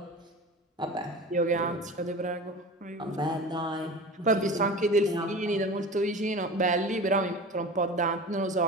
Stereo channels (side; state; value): both; normal; correlation 0.33